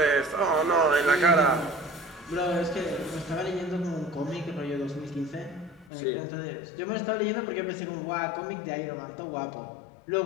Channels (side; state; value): right; drops out; at 5.9 s